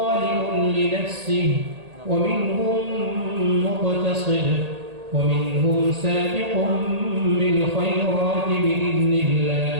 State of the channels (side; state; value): left; late; 1.8 ms